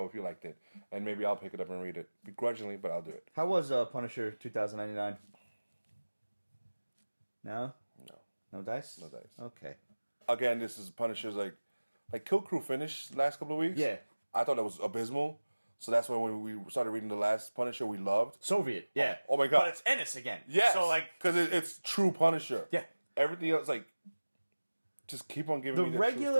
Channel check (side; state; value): both; inverted; correlation -1.00